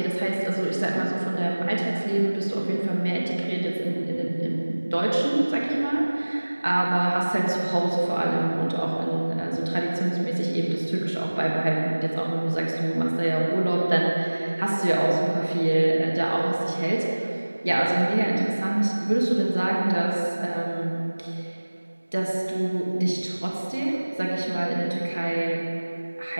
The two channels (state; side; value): inverted; both; correlation -1.00